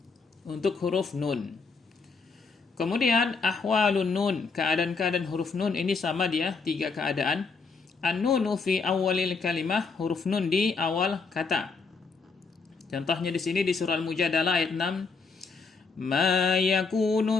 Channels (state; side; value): quieter; right; 4.6 dB